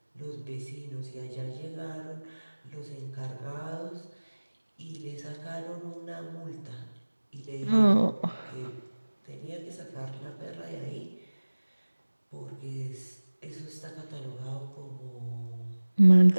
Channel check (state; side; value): inverted; both; correlation -1.00